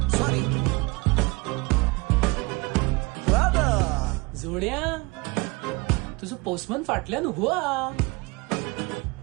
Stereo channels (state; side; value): quieter; left; 25.7 dB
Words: Sorry. जोड्या, तुझं पोस्टमन फाटल्यान हुआ.